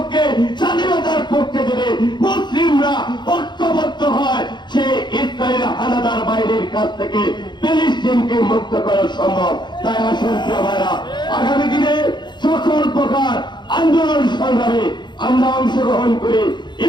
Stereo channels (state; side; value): late; right; 0.22 ms